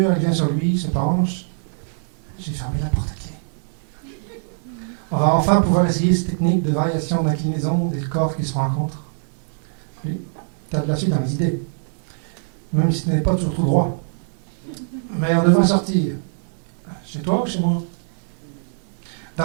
elle vient sur lui, se penche. J'ai fermé la porte à clé. On va enfin pouvoir essayer cette technique de variation d'inclinaison des corps qui se rencontrent. Oui, tu as de la suite dans les idées. Même si ce n'est pas toujours tout droit. Mais on devrait sortir. Chez toi ou chez moi?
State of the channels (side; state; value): left; silent; digital silence